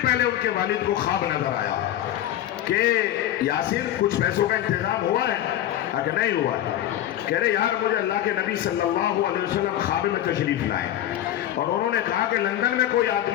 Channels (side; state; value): right; quieter; 12.3 dB